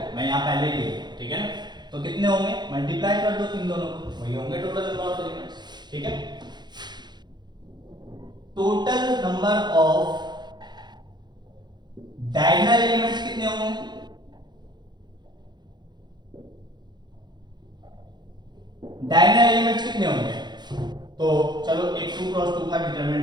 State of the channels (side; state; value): left; late; 0.21 ms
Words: मैं यहाँ पहले ही लिखूं, ठीक है ना। तो कितने होंगे? मल्टीप्लाई कर दो इन दोनों को, वही होंगे टोटल नंबर ऑफ एलिमेंट्स। ठीक है, total number of diagonal elements कितने होंगे? डायगोनल एलिमेंट्स कितने होंगे? तो चलो एक 2 क्रॉस 2 का